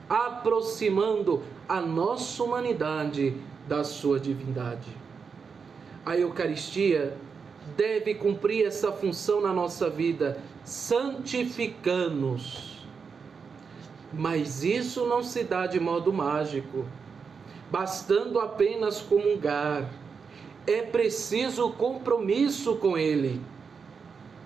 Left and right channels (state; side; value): quieter; left; 5.7 dB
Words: aproximando a nossa humanidade da sua divindade. A Eucaristia deve cumprir essa função na nossa vida, santificando-nos. Mas isso não se dá de modo mágico, bastando apenas comungar. É preciso compromisso com Ele.